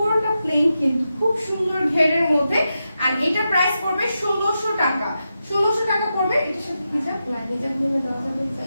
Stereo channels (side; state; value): both; inverted; correlation -0.89